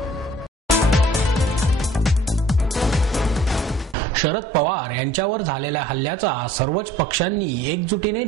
शरद पवार यांच्यावर झालेल्या हल्ल्याचा सर्वच पक्षांनी एकजुटीने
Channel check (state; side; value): normal; both; correlation 0.53